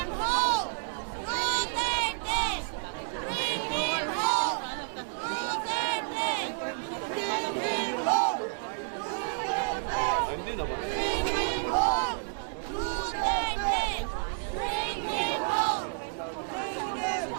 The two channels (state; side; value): silent; left; 58 dB below the other